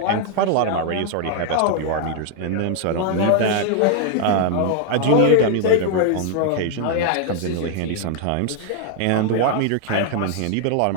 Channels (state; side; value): different; both; correlation 0.00